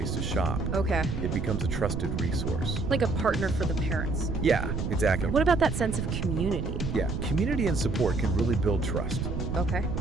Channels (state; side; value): noise; right; rumble, 3 dB below the sound